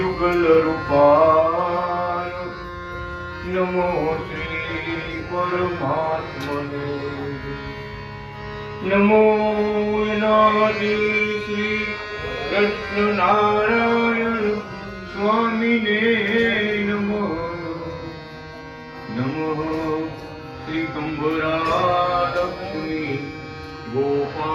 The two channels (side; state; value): both; identical; correlation 1.00